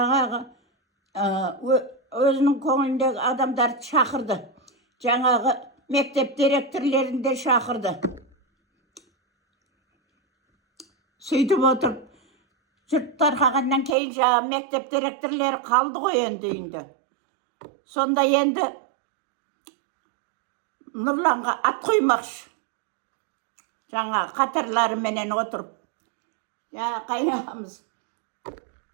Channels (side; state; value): left; drops out; at 14.0 s